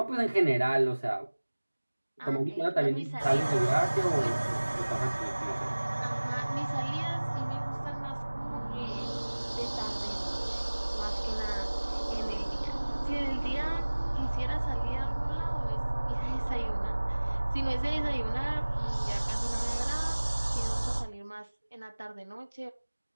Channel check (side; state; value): both; inverted; correlation -1.00